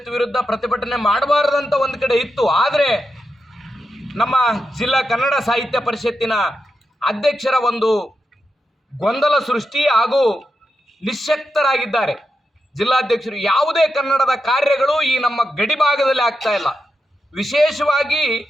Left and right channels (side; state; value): both; normal; correlation 0.87